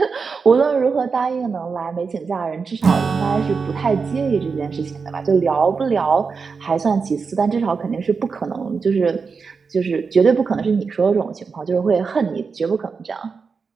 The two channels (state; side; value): quieter; left; 5.1 dB